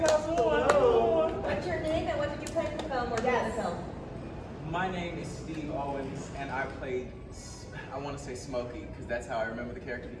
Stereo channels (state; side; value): identical; both; correlation 1.00